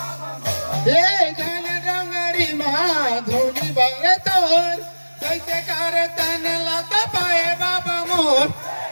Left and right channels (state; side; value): inverted; both; correlation -1.00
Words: ये गाना डोंगरी माँ धुनी बरतो कैसे करे तन लत पाए बाबा मोर